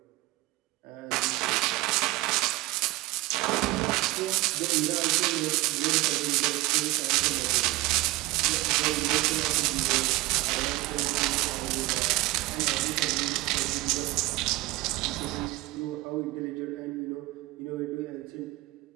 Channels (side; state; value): left; quieter; 20.0 dB